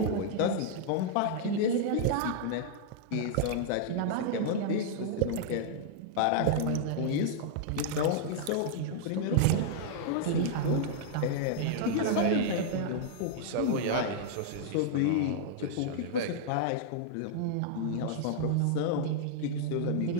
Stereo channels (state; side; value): different; both; correlation -0.01